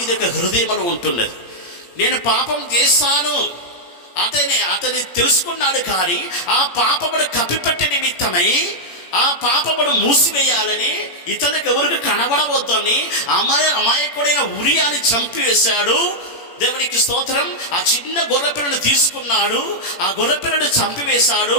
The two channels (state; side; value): late; right; 17 ms